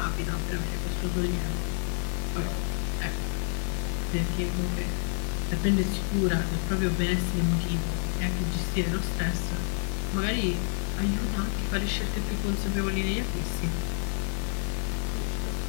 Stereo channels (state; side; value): silent; right; digital silence